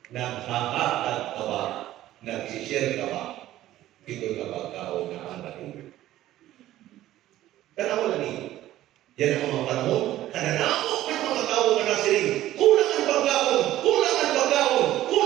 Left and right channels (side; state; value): left; quieter; 14.2 dB